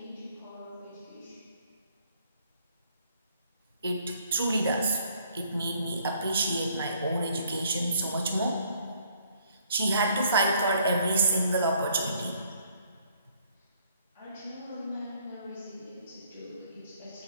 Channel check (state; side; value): inverted; both; correlation -0.65